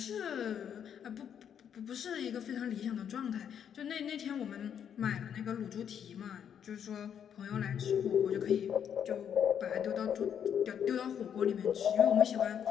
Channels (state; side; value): quieter; right; 8.5 dB